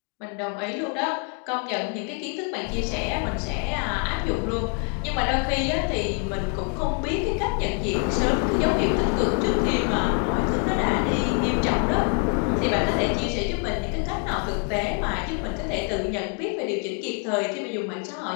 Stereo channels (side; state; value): right; quieter; 39.1 dB